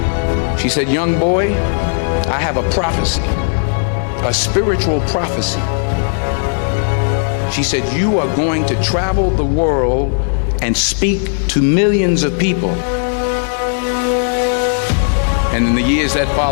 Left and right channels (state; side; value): silent; right; digital silence